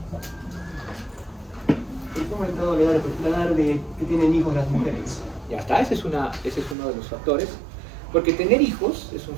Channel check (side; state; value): left; drops out; at 6.8 s